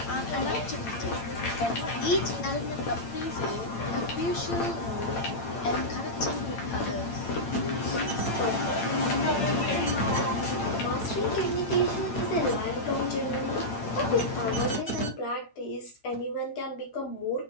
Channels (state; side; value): late; right; 8.9 ms